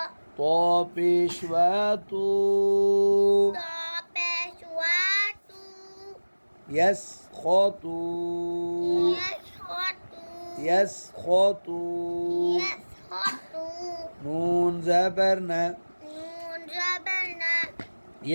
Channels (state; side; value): inverted; both; correlation -1.00